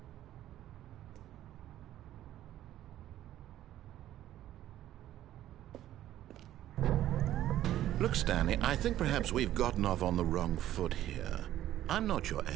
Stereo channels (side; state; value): left; quieter; 12.9 dB